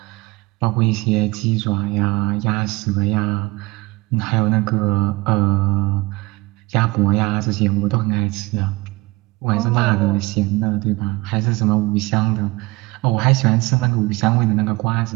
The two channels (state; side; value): quieter; left; 22.2 dB